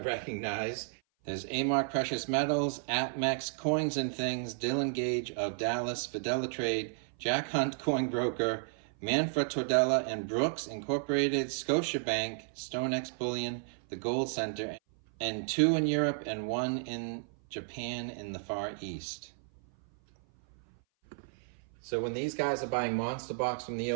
recognize. There's A-Mark Precious Metals, APMEX, Coins and Things, Dylan Gage of Dallas, Fidelitrade, Jack Hunt Coin Broker, Manfred Tordella and Brooks Incorporated, Scotiabank, StoneX Bullion, the Gold Center, and 2 in Europe and 1 in Japan in the Far East. So when these guys are buying monster box from the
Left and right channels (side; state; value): left; silent; 56 dB below the other